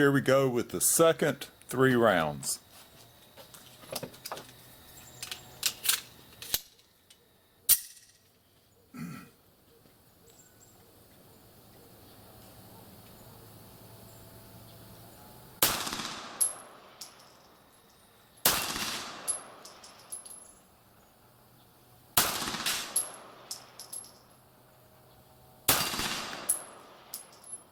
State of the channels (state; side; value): identical; both; correlation 1.00